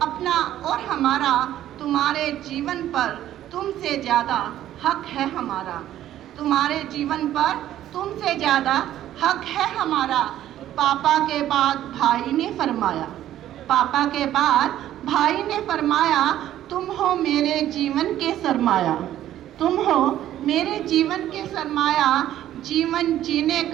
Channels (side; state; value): left; quieter; 12.5 dB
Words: अपना और हमारा। तुम्हारे जीवन पर तुमसे ज़्यादा हक है हमारा, तुम्हारे जीवन पर तुमसे ज़्यादा हक है हमारा। पापा के बाद भाई ने फरमाया, पापा के बाद भाई ने फरमाया, तुम हो मेरे जीवन के सरमाया, तुम हो मेरे जीवन के सरमाया। जीवन जीने